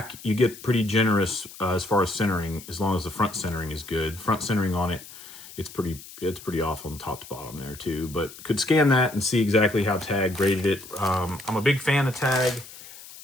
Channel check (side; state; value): left; noise; hiss, 17 dB below the sound